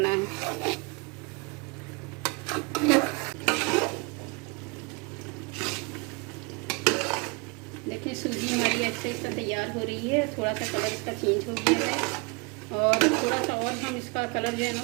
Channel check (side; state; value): left; quieter; 30.5 dB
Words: है। देखिए सूजी हमारी ऐसे इसका तैयार हो रही है। थोड़ा सा कलर इसका चेंज हो गया है और थोड़ा सा और हम इसका कलर जो है ना